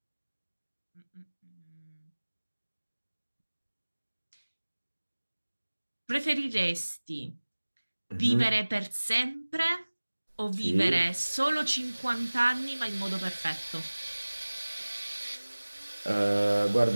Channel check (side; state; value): both; inverted; correlation -1.00